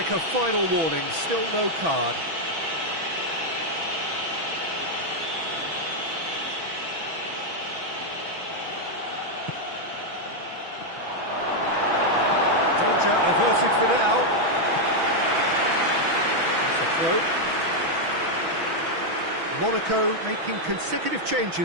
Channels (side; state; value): left; late; 6.1 ms